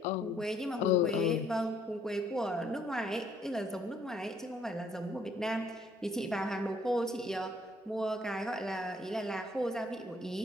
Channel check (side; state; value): both; normal; correlation 0.65